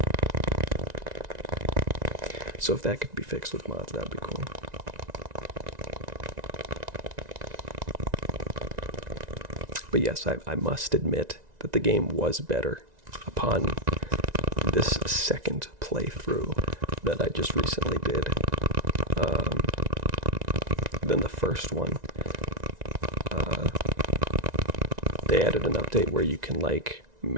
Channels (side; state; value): left; late; 1.9 ms